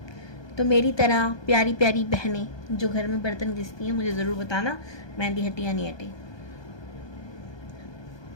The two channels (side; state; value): right; late; 1.2 ms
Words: तो मेरी तरह प्यारी प्यारी बहनें जो घर में बर्तन घिसती हैं, मुझे ज़रूर बताना मेहंदी हटी या नहीं हटी।